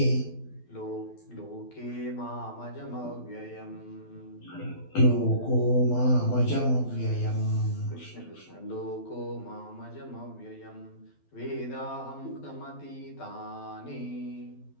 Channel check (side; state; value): right; late; 12 ms